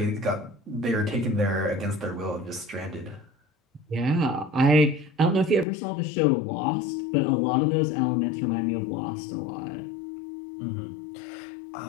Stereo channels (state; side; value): drops out; right; at 5.7 s